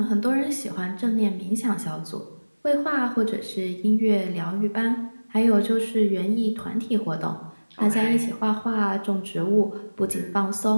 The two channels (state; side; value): inverted; both; correlation -1.00